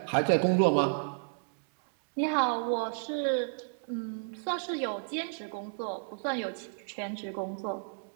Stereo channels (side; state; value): left; silent; 57 dB below the other